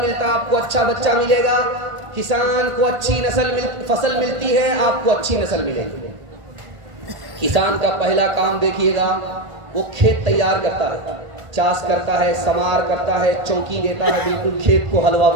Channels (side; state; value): left; late; 1.5 ms